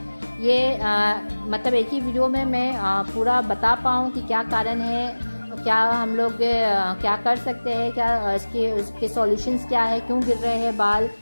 ये मतलब एक ही वीडियो में मैं पूरा बता पाऊँ कि क्या कारण है, क्या हम लोग क्या कर सकते हैं, क्या इसके सॉल्यूशंस क्या है, क्यों गिर रहे हैं बाल।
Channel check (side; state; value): both; inverted; correlation -1.00